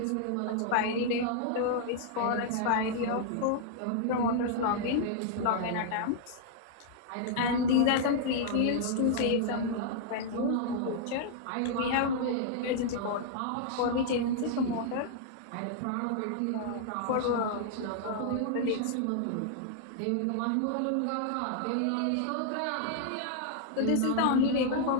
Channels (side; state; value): both; different; correlation -0.01